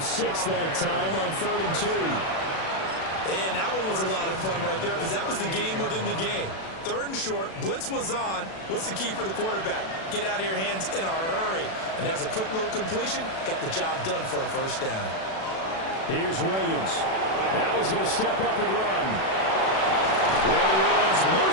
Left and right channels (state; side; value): late; right; 37 ms